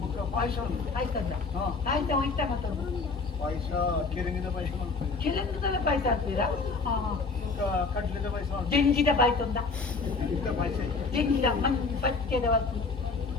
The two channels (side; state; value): right; quieter; 4.3 dB